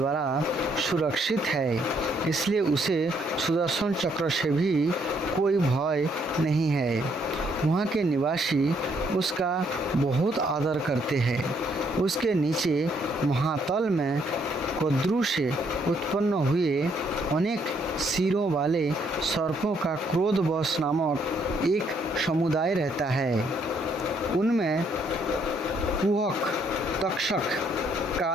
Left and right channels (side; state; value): both; normal; correlation 0.70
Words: सुरक्षित है, इसलिए उसे सुदर्शन चक्र से भी कोई भय नहीं है। वहाँ के निवासी उसका बहुत आदर करते हैं। उसके नीचे महातल में कोद्रु से उत्पन्न हुए अनेक सिरों वाले सर्पों का क्रोधवश नामक एक समुदाय रहता है। उनमें कुहक, तक्षक,